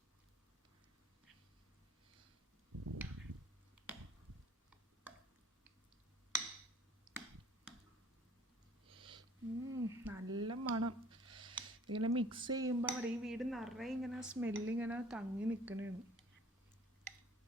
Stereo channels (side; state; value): both; normal; correlation 0.52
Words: നല്ല മണം. ഇങ്ങനെ മിക്സ് ചെയ്യുമ്പോൾ അവിടെ ഈ വീട് നിറയെ ഇങ്ങനെ സ്മെല്ലിങ്ങനെ തങ്ങി നിൽക്കണേണ്.